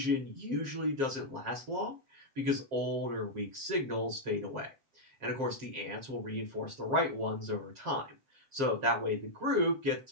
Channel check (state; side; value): late; left; 7.5 ms